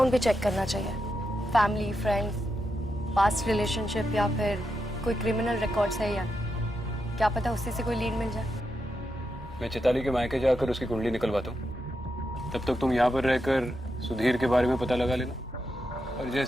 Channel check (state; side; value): normal; both; correlation 0.86